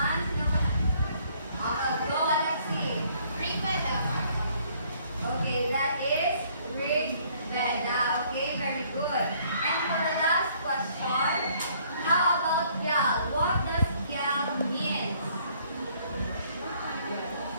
Go Alexi. Rig Veda. Okay, that is Rig Veda. Okay, very good. And for the last question, how about Gyal? What does Gyal mean?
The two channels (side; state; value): both; inverted; correlation -0.62